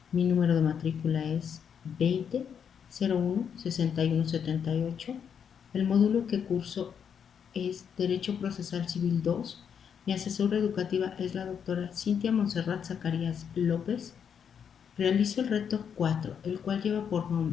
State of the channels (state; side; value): quieter; right; 7.6 dB